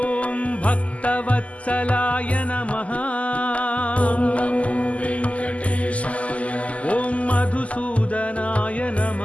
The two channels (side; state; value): right; late; 0.067 ms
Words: भक्तवत्सलाय नमः ॐ नमो वेङ्कटेशाय ॐ मधुसूदनाय